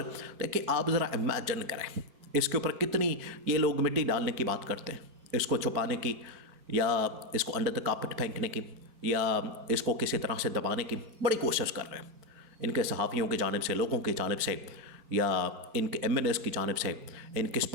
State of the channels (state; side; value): late; left; 4.6 ms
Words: देखिए, आप ज़रा इमेजिन करें, इसके ऊपर कितनी ये लोग मिट्टी डालने की बात करते हैं, इसको छुपाने की या इसको अंडर द कार्पेट फेंकने की या इसको किसी तरह से दबाने की बड़ी कोशिश कर रहे हैं। इनके सहाफ़ियों की जानिब से, लोगों की जानिब से, या इनके एमएनएस की जानिब से, इनके